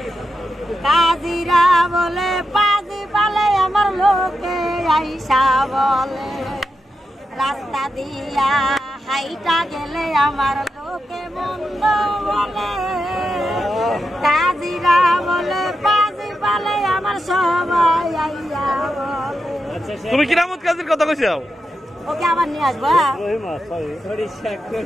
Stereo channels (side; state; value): both; normal; correlation 0.88